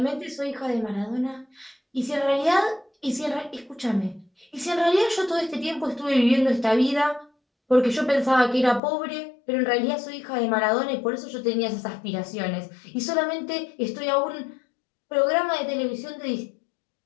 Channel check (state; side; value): drops out; right; at 8.8 s